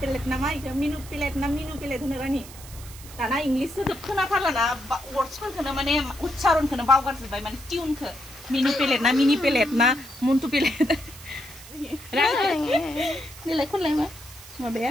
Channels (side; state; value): right; noise; hiss, 17 dB below the sound